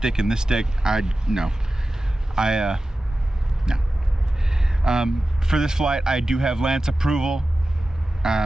and this stick," no. For this flight, I do have Lance approval.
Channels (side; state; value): both; normal; correlation 0.94